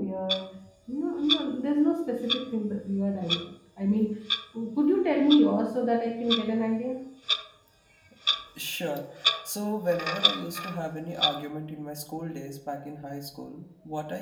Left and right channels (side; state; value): both; identical; correlation 1.00